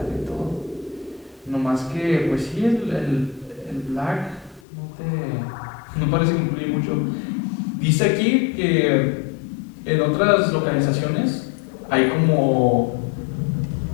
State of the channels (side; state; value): right; drops out; at 4.6 s